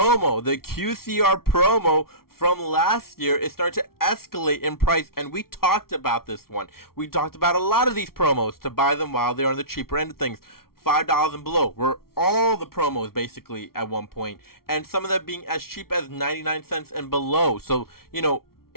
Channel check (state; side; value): late; right; 0.94 ms